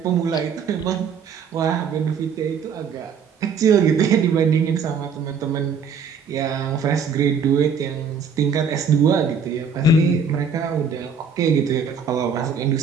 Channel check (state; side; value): quieter; left; 5.8 dB